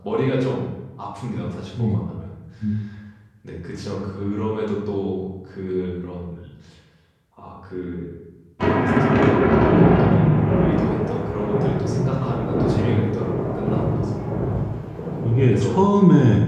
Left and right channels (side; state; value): both; identical; correlation 1.00